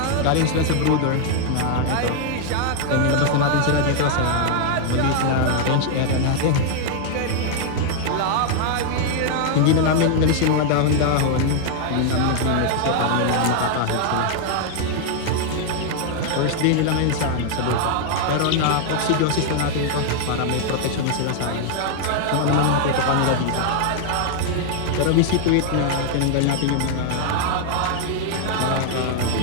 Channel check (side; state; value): both; different; correlation 0.00